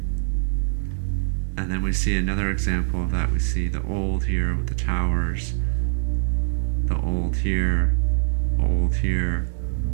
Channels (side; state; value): left; silent; digital silence